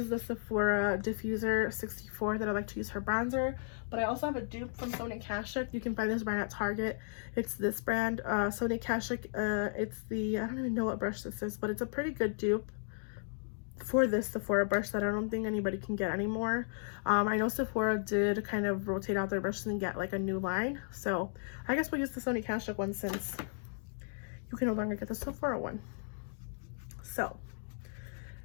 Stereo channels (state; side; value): silent; right; digital silence